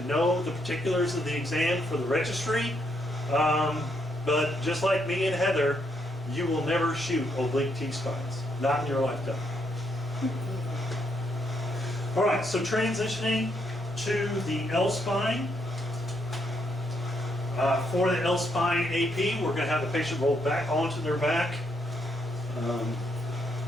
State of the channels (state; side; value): normal; both; correlation 0.76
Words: know the particulars of the exam for the registry. But just like me and Heather, you will never shoot oblique T-spines. Not in your lifetime. All right, so transitioning to the L-spine. For the L-spine AP, we're going to have the patient roll back onto their back.